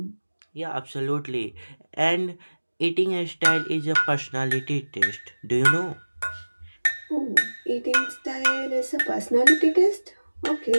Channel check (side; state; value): both; inverted; correlation -1.00